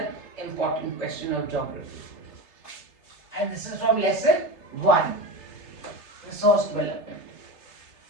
important question of geography. And this is from lesson 1, resource development.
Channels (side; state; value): right; late; 3.3 ms